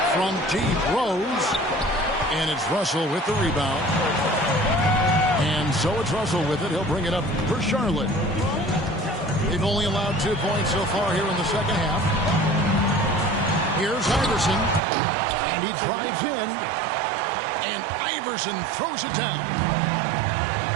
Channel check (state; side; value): drops out; left; at 14.8 s